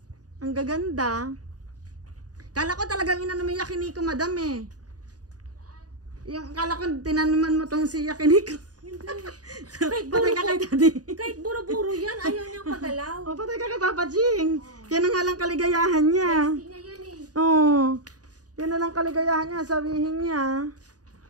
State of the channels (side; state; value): left; late; 0.68 ms